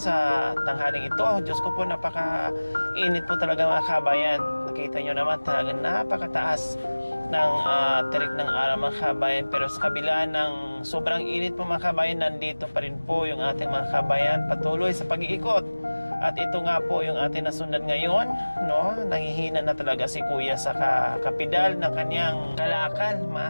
sa tanghaling ito. Diyos ko po, napaka-init po talaga mga kabayan. Nakita nyo naman talaga napakataas ng tirik ng araw mga kabayan. Pero sa kabila ng sobrang init po mga kabayan, nandito pa rin po yung ating mga kabayan patuloy sa pag-iikot. At ito nga po yung ating nasundan ngayon, no? Nangihina na talaga si Kuya sa kapidal ng kanyang kalakal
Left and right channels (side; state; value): both; inverted; correlation -1.00